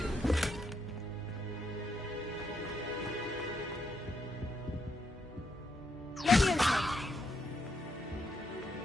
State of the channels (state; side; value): normal; both; correlation 0.78